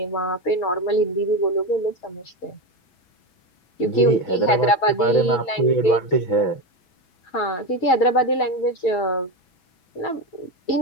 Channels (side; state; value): right; late; 6.1 ms